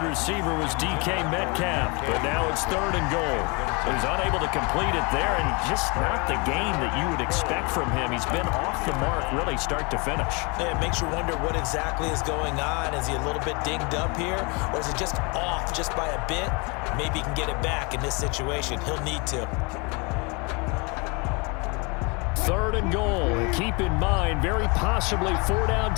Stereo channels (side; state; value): right; quieter; 30.2 dB